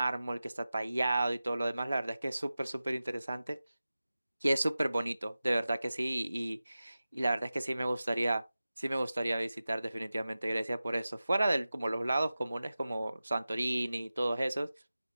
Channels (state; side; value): inverted; both; correlation -0.95